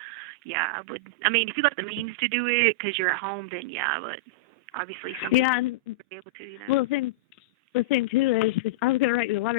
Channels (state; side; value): normal; both; correlation -0.09